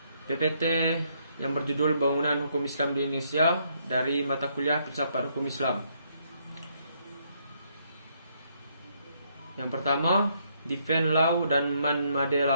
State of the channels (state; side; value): inverted; both; correlation -0.72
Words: PPT yang berjudul Bangunan Hukum Islam di Indonesia dari mata kuliah Filsafat Hukum Islam. Yang pertama, Defend Law dan Man Made